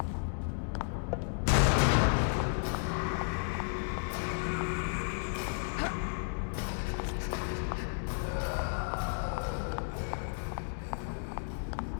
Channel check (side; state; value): right; silent; digital silence